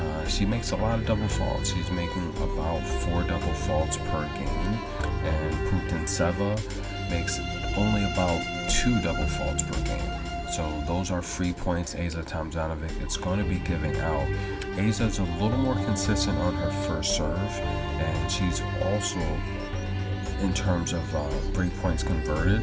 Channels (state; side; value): identical; both; correlation 1.00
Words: she makes a lot of double faults. She's making about 4 double faults per game, and Putintseva makes only about 2 double faults per game. So those are free points Asa Tomjanovic it's going to be giving out. Asa's a little more consistent on her first serve, and she's also, in terms of break points converted,